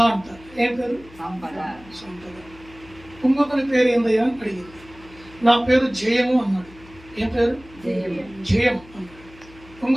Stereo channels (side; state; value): left; noise; hum, 22 dB below the sound